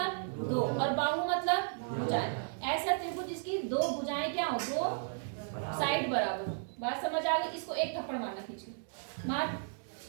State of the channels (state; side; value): silent; left; digital silence